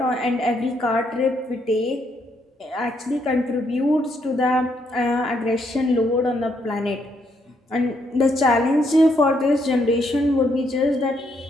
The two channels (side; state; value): both; normal; correlation 0.74